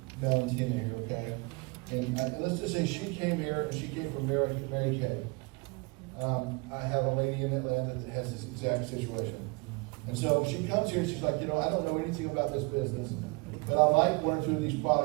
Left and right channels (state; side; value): quieter; left; 28.9 dB